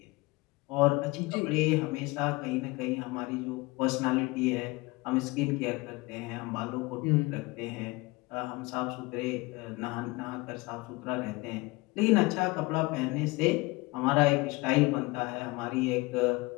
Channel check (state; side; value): quieter; right; 23.2 dB